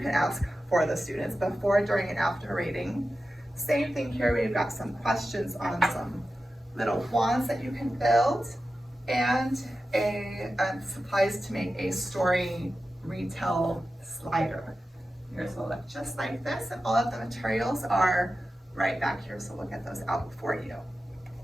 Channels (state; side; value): normal; both; correlation 0.93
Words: ask for the students before, during, and after rating. Same thing here, we've got some questions on some little wands that you can build, and supplies to make a story retell slider. Yours will look just like this, and all of the materials are right back here, so we'll get those out for you.